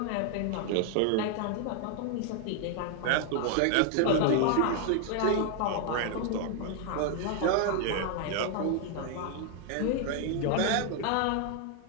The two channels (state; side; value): different; both; correlation 0.00